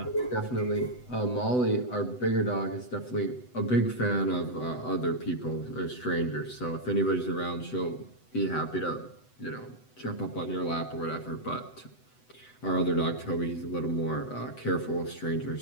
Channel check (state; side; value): late; right; 8.0 ms